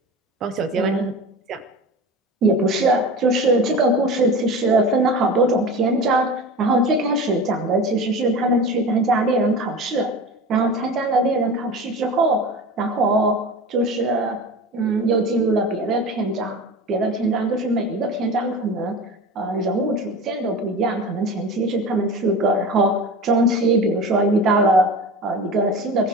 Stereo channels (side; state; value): both; normal; correlation 0.32